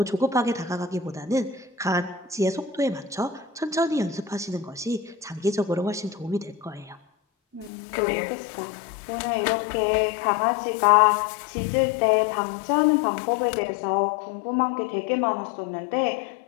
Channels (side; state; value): right; drops out; at 7.7 s